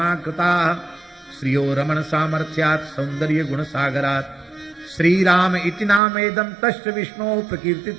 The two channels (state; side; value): drops out; left; at 6.0 s